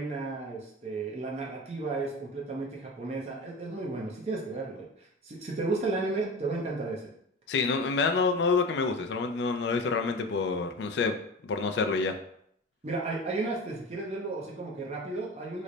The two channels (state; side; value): normal; both; correlation 0.31